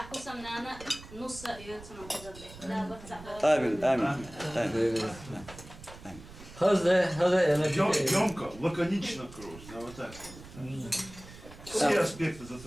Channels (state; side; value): noise; right; rumble, 17 dB below the sound